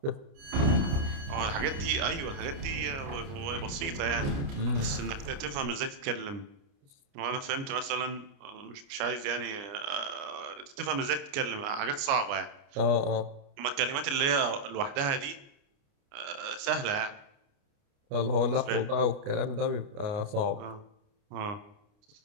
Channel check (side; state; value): left; late; 29 ms